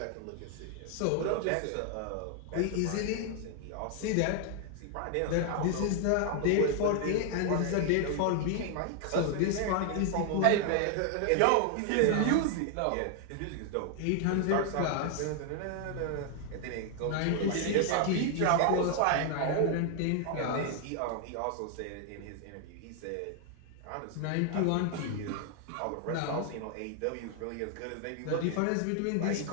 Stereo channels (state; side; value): different; both; correlation 0.00